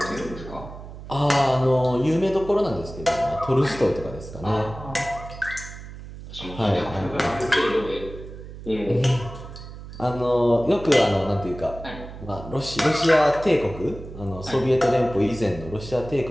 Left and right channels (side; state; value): right; noise; hum, 13 dB below the sound